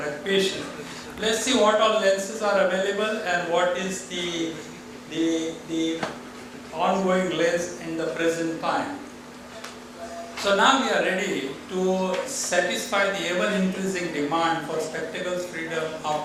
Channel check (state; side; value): identical; both; correlation 1.00